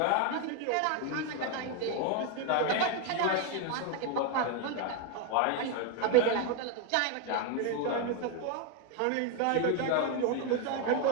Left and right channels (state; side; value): different; both; correlation 0.01